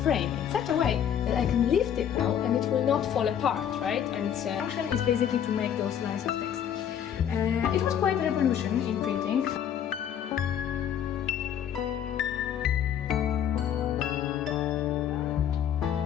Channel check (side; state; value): right; quieter; 9.3 dB